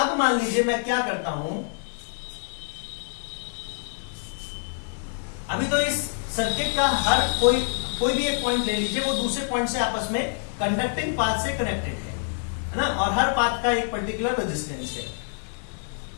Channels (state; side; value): silent; right; digital silence